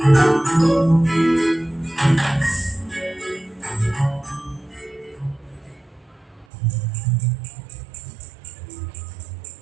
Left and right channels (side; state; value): left; drops out; at 6.5 s